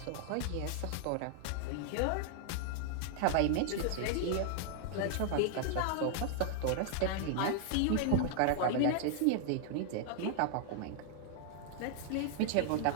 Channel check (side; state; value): both; different; correlation 0.00